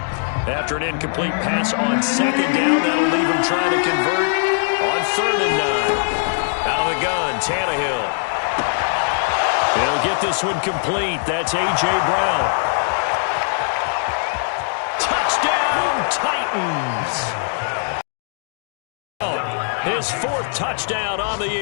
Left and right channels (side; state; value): right; silent; digital silence